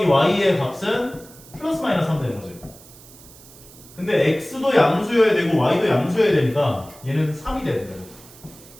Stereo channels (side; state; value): right; noise; hiss, 21 dB below the sound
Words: y의 값은 플러스 마이너스 3 되는 거지. 근데 x도 양수여야 되고 y도 양수여야 되니까 얘는 3이 돼야 돼요.